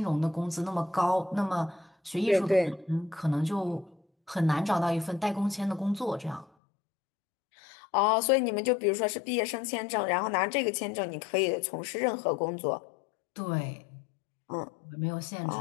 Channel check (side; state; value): right; drops out; at 6.5 s